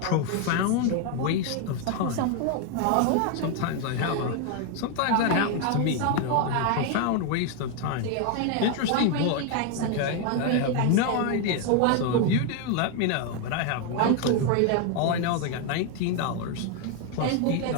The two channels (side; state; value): both; different; correlation 0.01